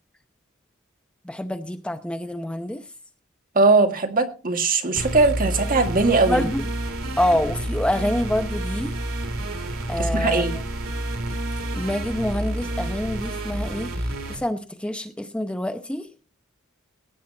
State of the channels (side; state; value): both; normal; correlation 0.39